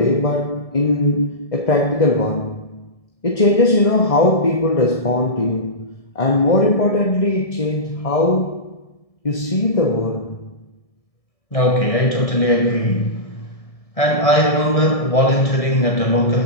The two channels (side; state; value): right; late; 1.7 ms